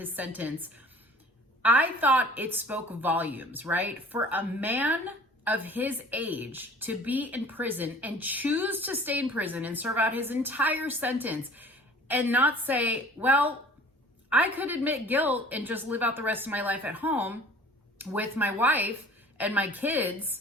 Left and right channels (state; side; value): normal; both; correlation 0.47